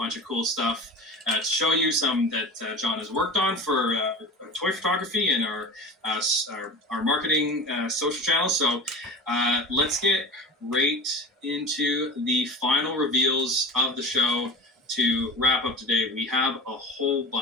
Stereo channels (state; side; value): normal; both; correlation 0.34